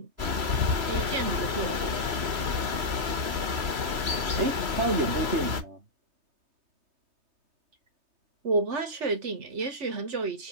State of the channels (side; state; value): left; late; 3.0 ms